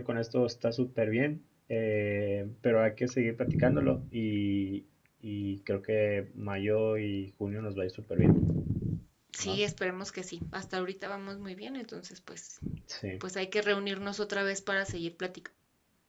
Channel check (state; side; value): identical; both; correlation 1.00